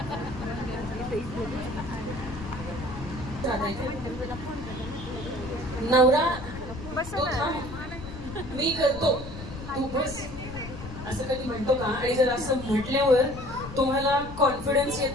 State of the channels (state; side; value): noise; left; rumble, 11 dB below the sound